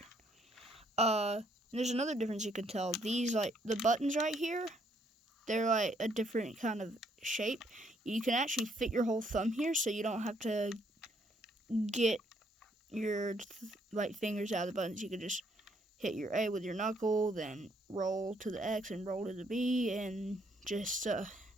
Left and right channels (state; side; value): normal; both; correlation 0.69